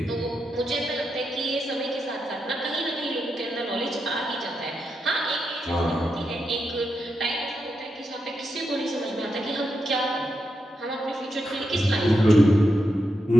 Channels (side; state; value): both; normal; correlation 0.85